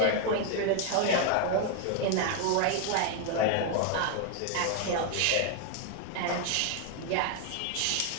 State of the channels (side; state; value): both; different; correlation 0.00